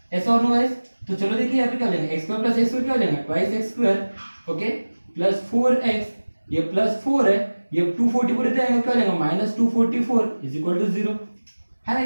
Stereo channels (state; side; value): inverted; both; correlation -1.00